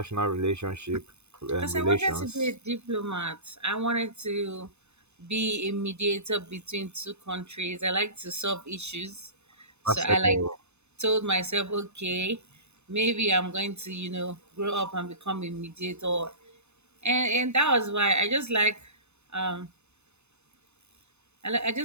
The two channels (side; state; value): left; late; 0.81 ms